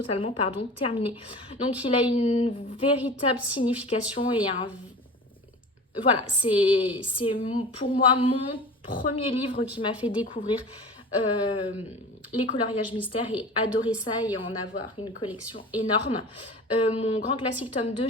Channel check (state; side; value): normal; both; correlation 0.36